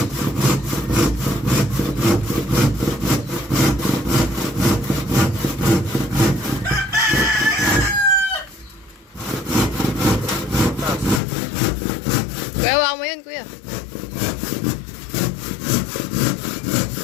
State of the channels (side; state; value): right; drops out; at 11.2 s